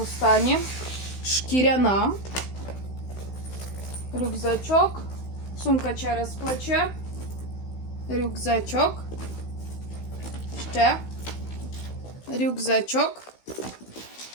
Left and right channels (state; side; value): late; right; 16 ms